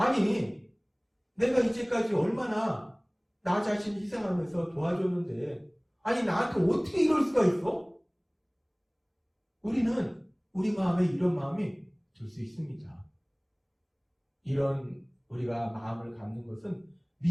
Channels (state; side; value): identical; both; correlation 1.00